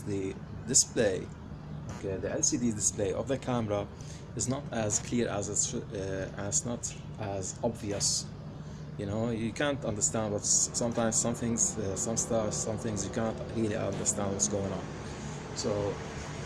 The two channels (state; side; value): identical; both; correlation 1.00